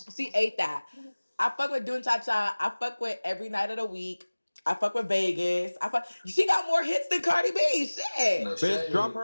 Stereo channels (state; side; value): inverted; both; correlation -1.00